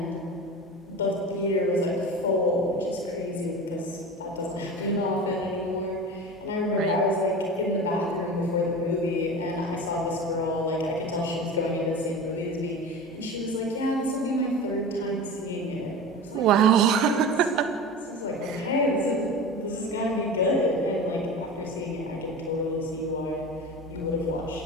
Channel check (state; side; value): normal; both; correlation 0.31